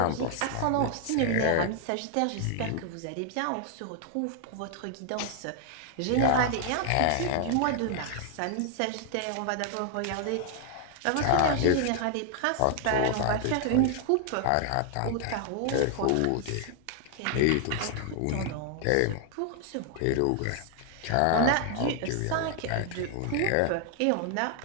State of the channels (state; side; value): different; both; correlation 0.00